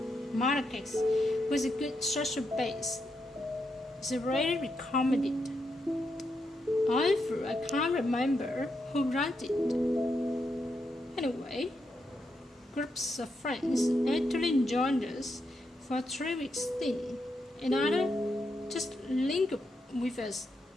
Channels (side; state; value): both; normal; correlation 0.82